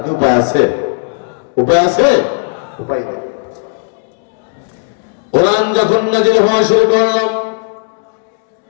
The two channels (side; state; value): right; silent; digital silence